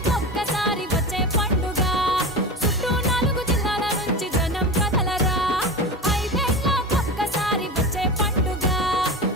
వచ్చే పండుగ చుట్టూ 4 జిల్లాల నుంచి జనం కదలరా ఐదేళ్ళకొక్కసారి వచ్చే పండుగ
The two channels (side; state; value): both; normal; correlation 0.27